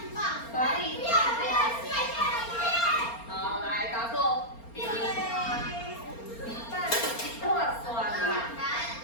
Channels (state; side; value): late; right; 4.3 ms